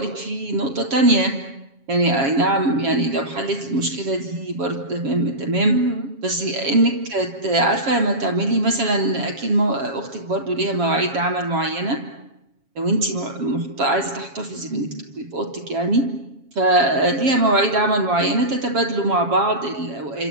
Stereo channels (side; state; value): left; late; 7.3 ms